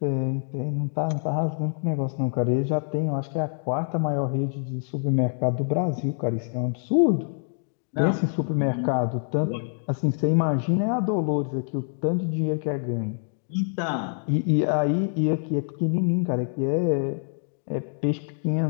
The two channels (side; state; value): right; silent; 56 dB below the other